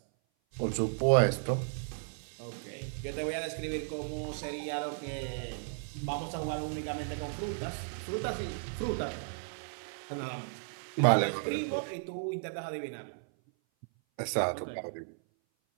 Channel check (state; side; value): silent; left; 55 dB below the other